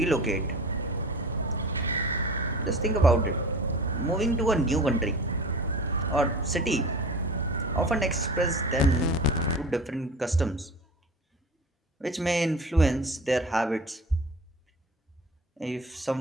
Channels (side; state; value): both; normal; correlation 0.37